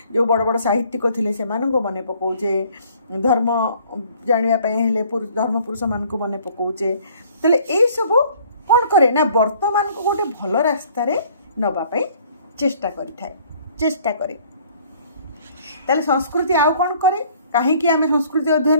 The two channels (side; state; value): both; inverted; correlation -0.57